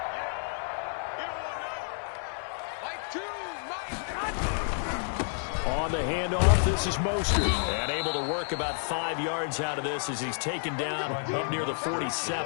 On the handoff, this is Mostert. And able to work about 5 yards out of this as he's taken down up near the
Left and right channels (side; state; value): right; silent; 58 dB below the other